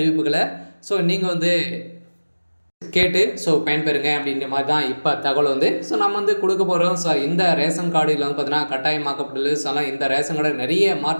நீங்கள் கேட்டு பயன்பெறுங்க அப்படின்ற மாதிரி தான் இப்போ தகவல் நம்ம கொடுக்க போகிறோம். இந்த ரேஷன் கார்டில் பார்த்தீங்கன்னா கட்டாயமாக்கப்பட்டுள்ளது. இந்த ரேஷன் கார்டு நிறைய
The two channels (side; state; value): both; inverted; correlation -1.00